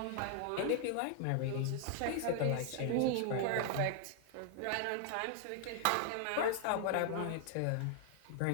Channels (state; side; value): different; both; correlation 0.00